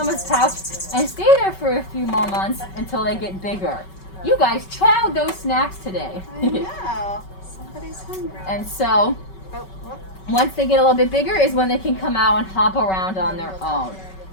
pouch and stay there for a few more months until they get bigger. You guys chowed those snacks today. I know. Somebody's hungry. And so, once they get a little bit bigger is when they can come out and hop around on their own.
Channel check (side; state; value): right; late; 5.3 ms